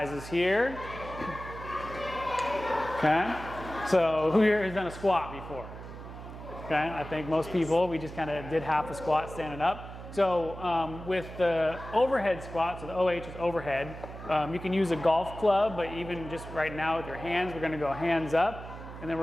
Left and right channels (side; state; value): right; noise; hum, 12 dB below the sound